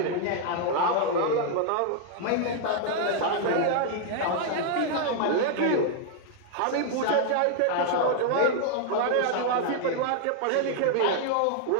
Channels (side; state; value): both; different; correlation 0.00